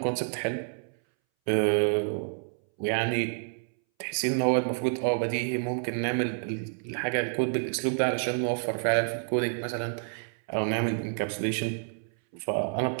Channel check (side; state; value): left; silent; 59 dB below the other